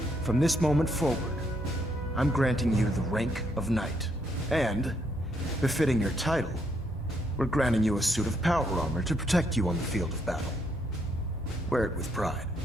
from this moment forward, I'm granting you the rank of Knight. And, befitting your title, we're granting you a suit of power armor to protect you on the field of battle. Wear it with pride.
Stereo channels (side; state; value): both; normal; correlation 0.74